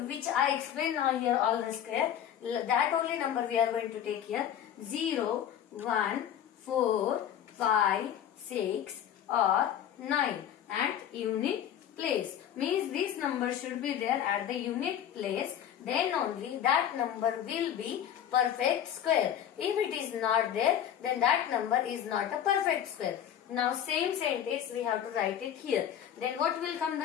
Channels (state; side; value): quieter; right; 9.9 dB